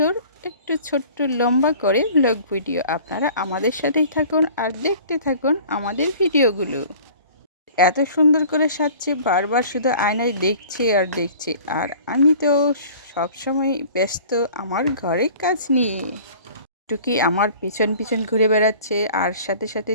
একটু ছোট্ট লম্বা করে ব্লগ ভিডিও। আপনারা আমাদের সাথেই থাকুন আর দেখতে থাকুন আমাদের ভিডিওগুলো। এত সুন্দর করে সাজছে, বারবার শুধু আয়নায় দেখছে আর দেখছে। আর আমি তো সবসময় ব্যস্ত আমার ঘরের কাজ নিয়ে। টুকি আমার পিছন পিছন ঘুরে বেড়াচ্ছে, আর সাথে সাথে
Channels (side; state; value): both; inverted; correlation -0.47